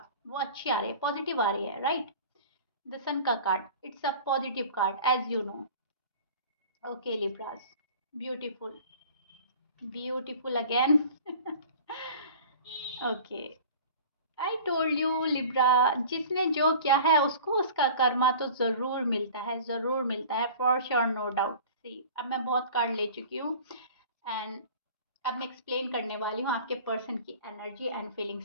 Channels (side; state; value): both; inverted; correlation -0.42